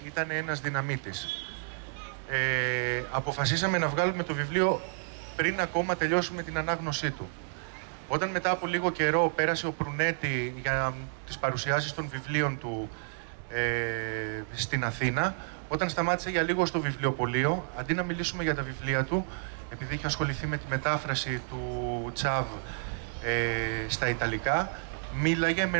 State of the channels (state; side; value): silent; left; digital silence